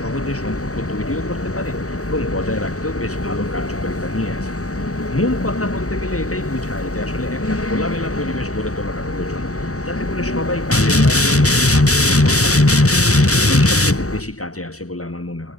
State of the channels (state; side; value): late; right; 0.65 ms